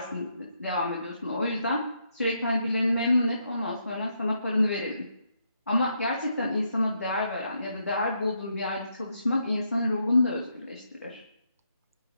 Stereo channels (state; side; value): inverted; both; correlation -0.79